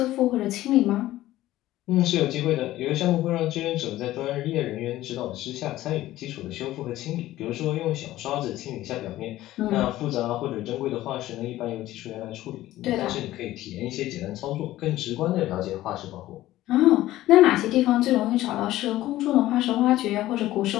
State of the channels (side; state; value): right; quieter; 15.3 dB